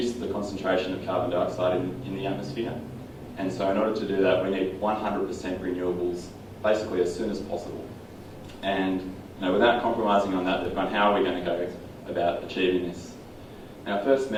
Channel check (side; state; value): both; identical; correlation 1.00